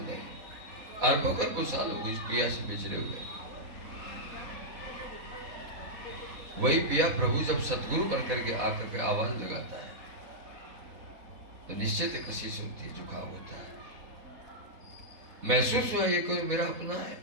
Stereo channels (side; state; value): left; late; 4.1 ms